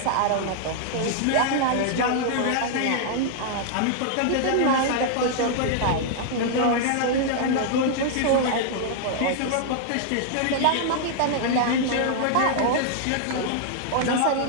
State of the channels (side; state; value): both; different; correlation -0.01